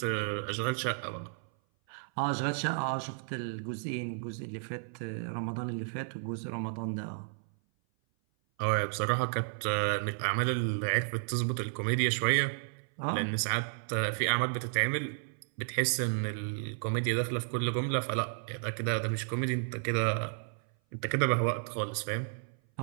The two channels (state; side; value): silent; left; 56 dB below the other